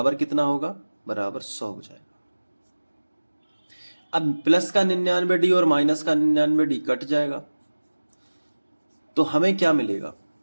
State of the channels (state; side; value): inverted; both; correlation -1.00